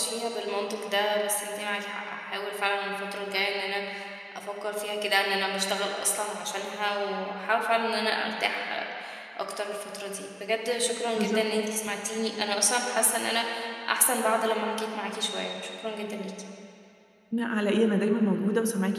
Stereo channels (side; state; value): both; identical; correlation 1.00